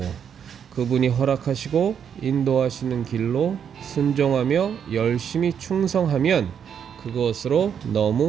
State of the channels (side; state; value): left; quieter; 8.0 dB